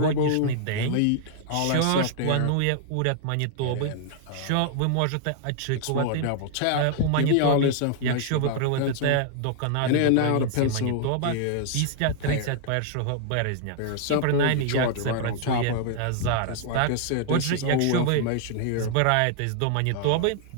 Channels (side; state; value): both; different; correlation -0.01